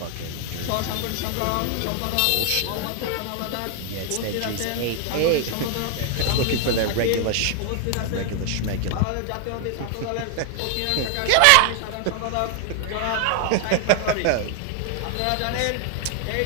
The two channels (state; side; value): different; both; correlation 0.00